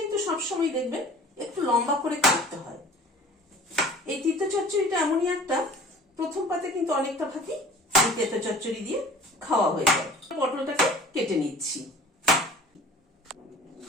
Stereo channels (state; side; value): normal; both; correlation 0.45